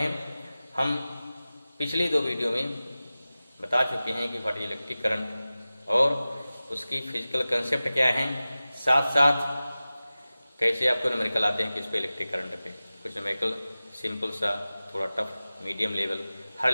हम पिछली दो वीडियो में बता चुके हैं कि व्हाट इज इलेक्ट्रिक करंट और उसकी फिजिकल कंसेप्ट क्या है, साथ साथ कैसे आपको न्यूमेरिकल आते हैं किस पे, इलेक्ट्रिक करंट पे। कुछ न्यूमेरिकल सिंपल सा, थोड़ा टफ, मीडियम लेवल, हर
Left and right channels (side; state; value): both; inverted; correlation -0.96